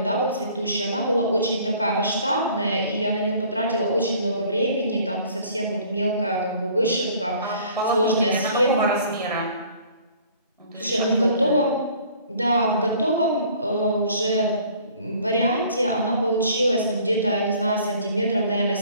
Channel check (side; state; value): both; inverted; correlation -0.54